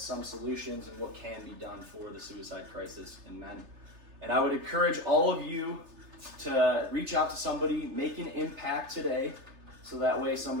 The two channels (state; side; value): late; left; 3.3 ms